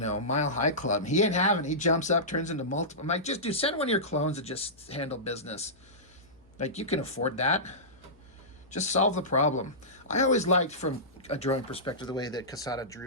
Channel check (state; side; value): noise; left; hum, 30 dB below the sound